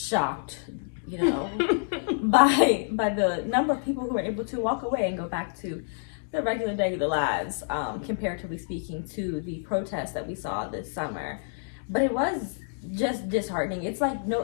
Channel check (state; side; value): silent; right; digital silence